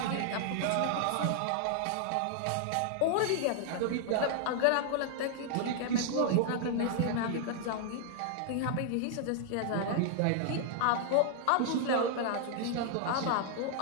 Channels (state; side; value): different; both; correlation 0.00